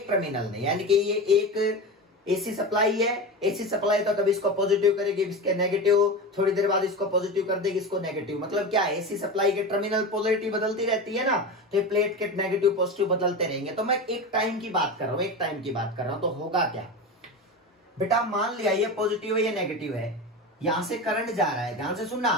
टर्मिनल ने, यानी कि ये एक एसी सप्लाई है, एसी सप्लाई तो कभी इसको पॉजिटिव करेगी, इसके नेगेटिव, थोड़ी देर बाद इसको पॉजिटिव कर देगी, इसको नेगेटिव। मतलब क्या है, एसी सप्लाई के टर्मिनल पोलैरिटी बदलती रहती है ना, तो ये प्लेट के नेगेटिव पॉजिटिव बदलते रहेंगे। तो मैं एक टाइम की बात कर रहा हूं, एक टाइम की बात कर रहा हूं, तो होगा क्या बेटा, मान लिया ये पॉजिटिव है, ये नेगेटिव है, यहां से करंट जा रहा है, ध्यान से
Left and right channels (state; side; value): normal; both; correlation 0.25